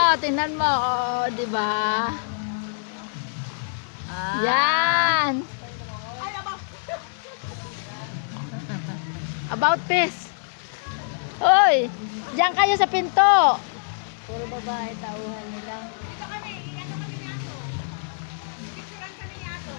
tingnan mo. Oh, di ba? Yan. Ay, aba. About this. Hoy, diyan kayo sa pinto. Puro babae, tauhan nila. Dito kami, ano kami ni Ato? Picturean kami ni Ato.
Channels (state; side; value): silent; right; digital silence